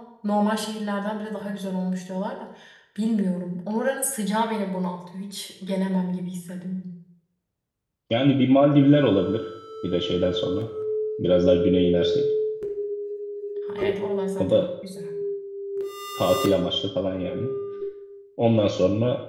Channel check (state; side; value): identical; both; correlation 1.00